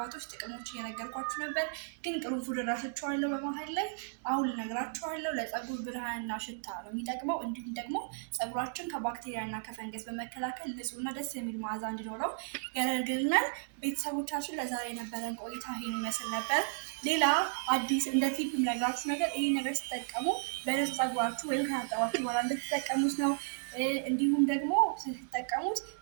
ጥቅሞች እየነገርኳችሁ ነበር። ግን ቅርንፉድ እረሳቸዋለሁ በመሀል ላይ። አሁን ልነግራችኋለሁ። ለፀጉር ብርሃንና ሽታ ነው የሚጠቅመው። እንዲሁም ደግሞ ፀጉራችን ከባክቴሪያና ከፈንገስ በመከላከል ንጹህና ደስ የሚል መዓዛ እንዲኖረው ያደርግልናል። ቤተሰቦቻችን ለዛሬ የነበረን ቆይታ ይሄን ይመስል ነበር። ሌላ አዲስ እንደ ቲፕ የምነግራችሁ ነገር ይሄ ነገር ስትጠቀሙ በንጹህ ፀጉራችሁ ወይም ከታጠባችሁ በኋላ እንድትጠቀሙት ነው። እንዲሁም ደግሞ ስትጠቀሙት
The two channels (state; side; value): silent; left; digital silence